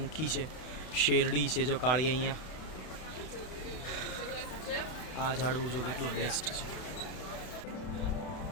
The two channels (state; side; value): late; right; 32 ms